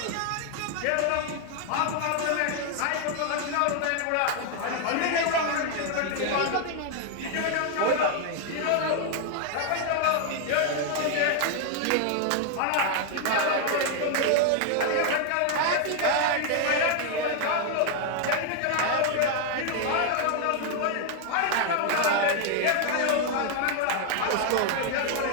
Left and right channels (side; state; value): both; different; correlation 0.00